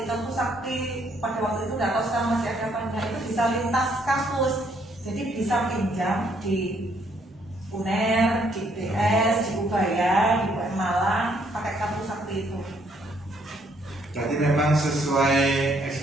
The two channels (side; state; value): both; normal; correlation 0.69